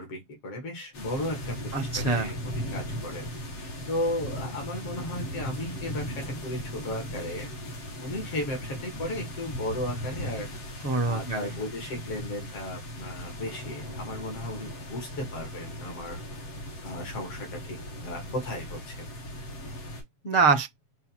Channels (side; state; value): right; late; 7.3 ms